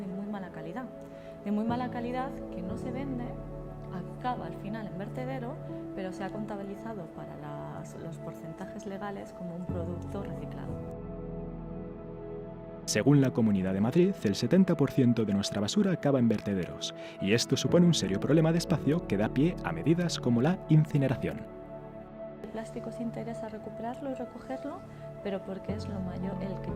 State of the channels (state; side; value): identical; both; correlation 1.00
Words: muy mala calidad. De muy mala calidad que no se vende, acaba al final en vertedero, pero se ha contabilizado para los porcentajes legales como un producto reciclado. Según la Comunidad de Madrid, el 70% de nuestra basura acaba en vertederos, y esto supone un serio problema de espacio que da pie a medidas como la incineración. El plástico se interesa recuperarlo y recogerlo, pero porque es el que